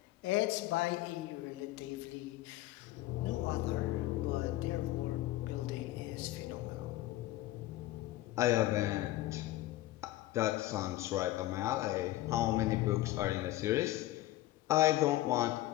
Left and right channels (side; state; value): right; quieter; 16.1 dB